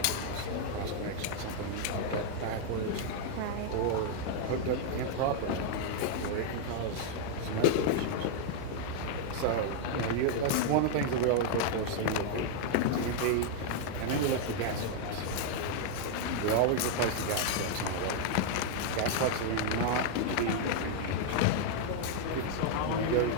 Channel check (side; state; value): both; different; correlation 0.00